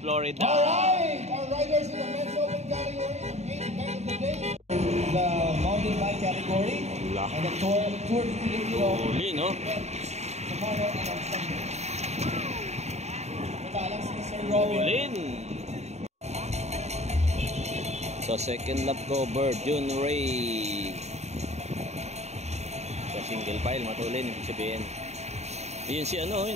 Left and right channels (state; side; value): late; left; 0.32 ms